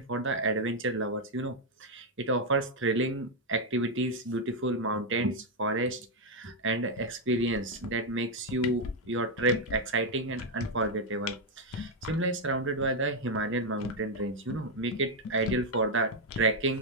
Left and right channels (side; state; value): both; normal; correlation 0.01